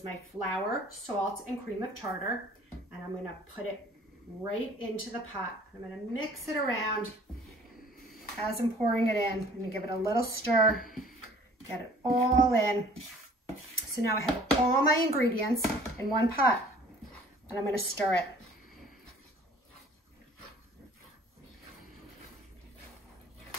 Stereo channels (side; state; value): both; normal; correlation 0.52